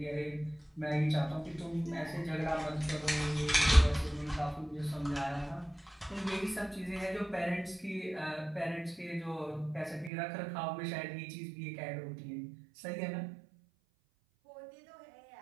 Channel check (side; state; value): left; drops out; at 10.1 s